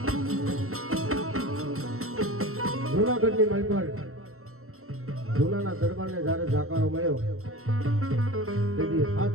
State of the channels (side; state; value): left; late; 0.63 ms